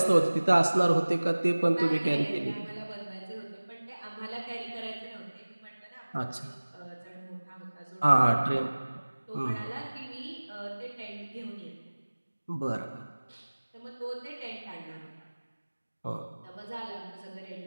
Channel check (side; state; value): both; inverted; correlation -1.00